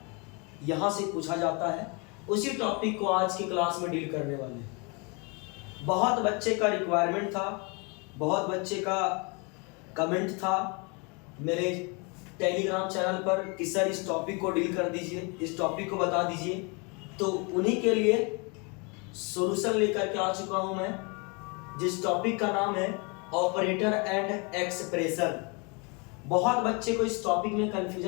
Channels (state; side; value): quieter; right; 31.7 dB